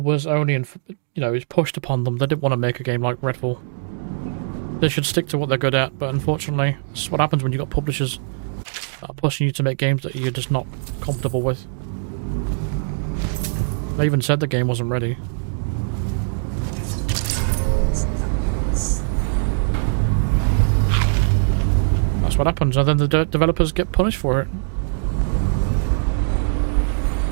was only, it was pushed upon them. They didn't want to make a game like Redfall. They should stick to what they're good at, but unfortunately, this is what happens when you've got publishers that are pushing you to make games that you're just not comfortable with. They even said the game wasn't ready. That's what happens, and then the developers get punished for it.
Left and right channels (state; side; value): silent; left; digital silence